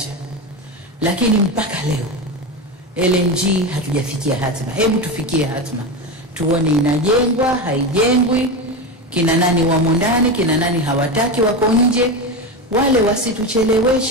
Lakini mpaka leo LNG hatujafikia hatima. Hebu tufikie hatima. Tuone inajengwa, haijengwi, kina nani wamo ndani, kina nani hawataki wako nje. Wale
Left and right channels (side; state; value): both; normal; correlation 0.18